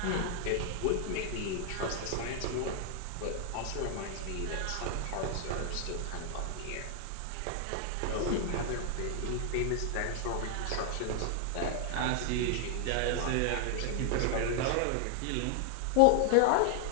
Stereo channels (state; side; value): different; both; correlation 0.00